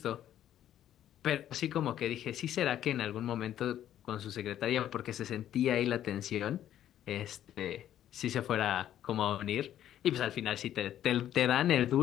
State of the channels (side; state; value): right; quieter; 11.4 dB